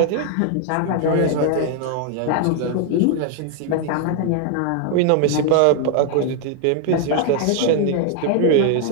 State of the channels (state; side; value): different; both; correlation 0.00